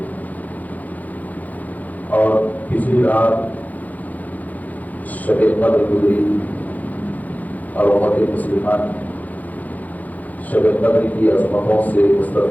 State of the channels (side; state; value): right; late; 0.079 ms